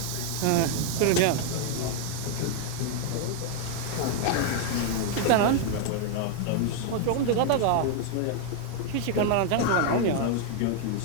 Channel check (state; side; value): different; both; correlation 0.00